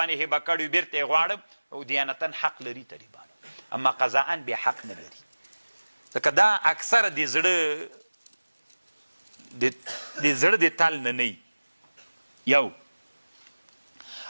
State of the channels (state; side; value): inverted; both; correlation -1.00